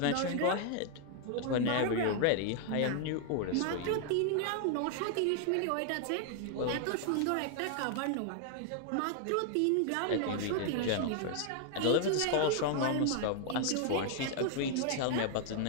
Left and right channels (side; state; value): both; different; correlation 0.00